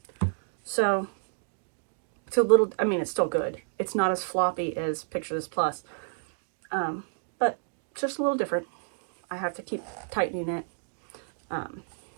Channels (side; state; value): left; silent; digital silence